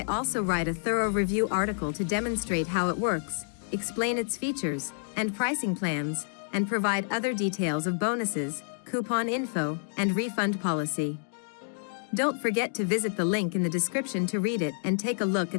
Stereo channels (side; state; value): right; silent; digital silence